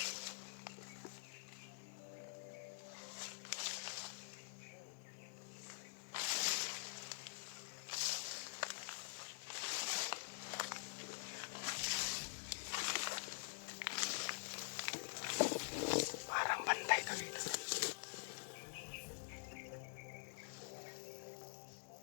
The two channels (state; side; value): silent; right; digital silence